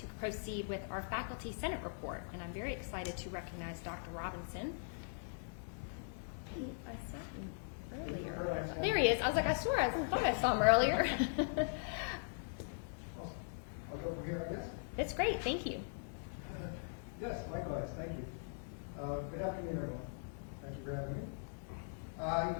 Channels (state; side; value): silent; right; digital silence